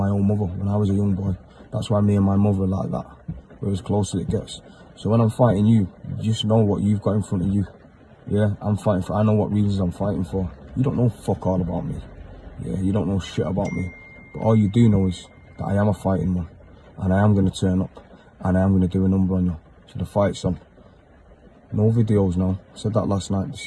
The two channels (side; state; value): both; identical; correlation 1.00